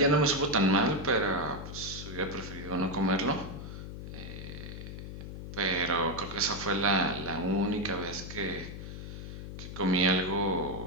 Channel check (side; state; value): left; noise; hum, 9 dB below the sound